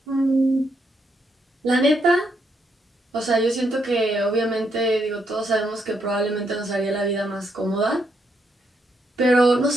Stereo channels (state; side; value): normal; both; correlation 0.77